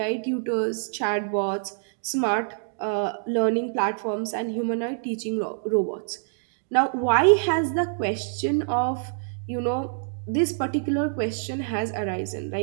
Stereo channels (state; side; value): silent; left; digital silence